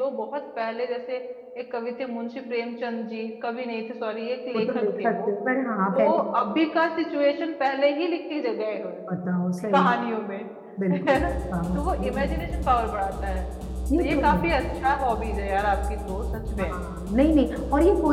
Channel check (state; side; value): identical; both; correlation 1.00